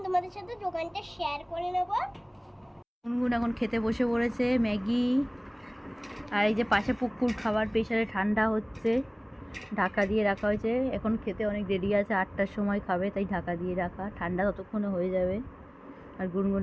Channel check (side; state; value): both; identical; correlation 1.00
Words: তোমাদের সাথে দোকানটা শেয়ার করে নেব। গুনগুন এখন খেতে বসে পড়েছে ম্যাগি। আর এই যে পাশে পুকুর খাবার প্রেসারে ঠান্ডা হচ্ছে, ঢাকা দিয়ে রাখা হয়েছে। এখন খেতে অনেক দেরি আছে, 8টার সময় খাবে, তাই ঢাকা দিয়ে রাখা, ঠান্ডা ততক্ষণে হয়ে যাবে। আর গুনগুন